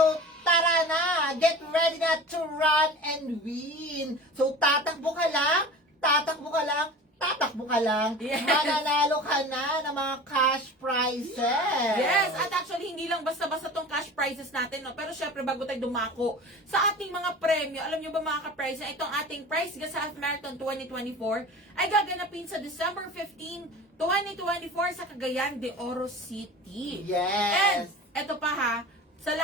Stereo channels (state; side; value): normal; both; correlation 0.37